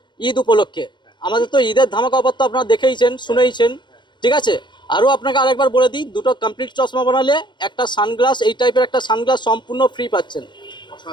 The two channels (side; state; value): right; late; 0.22 ms